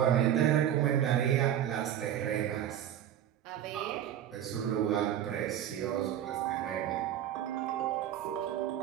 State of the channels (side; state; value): left; quieter; 10.8 dB